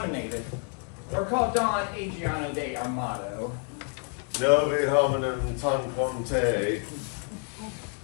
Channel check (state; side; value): quieter; right; 38.5 dB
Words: or called Don Adriano de Armado. Novi hominem tanquante.